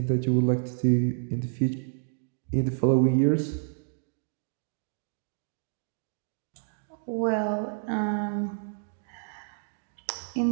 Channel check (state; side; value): silent; left; digital silence